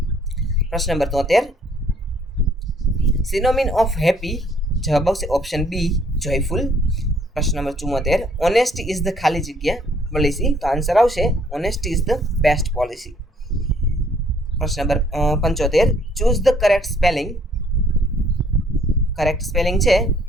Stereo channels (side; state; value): both; normal; correlation 0.63